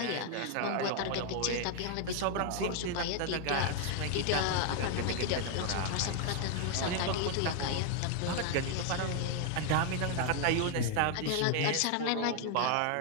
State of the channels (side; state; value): both; different; correlation 0.00